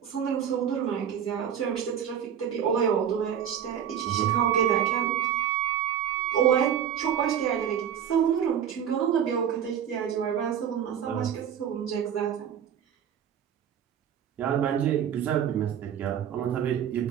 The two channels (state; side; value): quieter; left; 9.0 dB